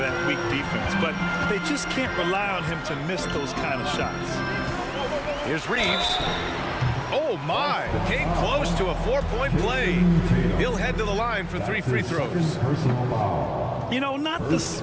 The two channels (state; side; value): identical; both; correlation 1.00